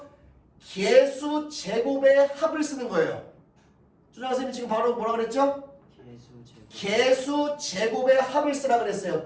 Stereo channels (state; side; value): identical; both; correlation 1.00